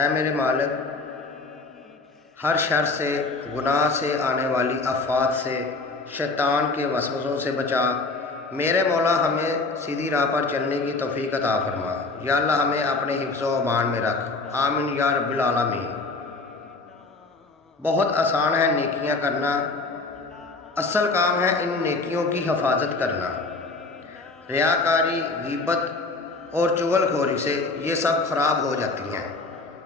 میرے مالک، ہر شر سے، گناہ سے آنے والی آفات سے، شیطان کے وسوسوں سے بچا۔ میرے مولا ہمیں سیدھی راہ پر چلنے کی توفیق عطا فرما۔ یا اللہ ہمیں اپنے حفظ و امان میں رکھ، آمین یا رب العالمین۔ بہت آسان ہے نیکیاں کرنا، اصل کام ہے ان نیکیوں کی حفاظت کرنا۔ ریاکاری، غیبت اور چغل خوری سے یہ سب خراب ہو جاتی ہیں۔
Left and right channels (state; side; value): quieter; right; 3.7 dB